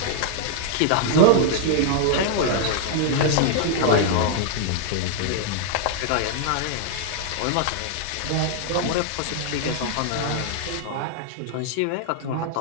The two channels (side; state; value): both; different; correlation 0.00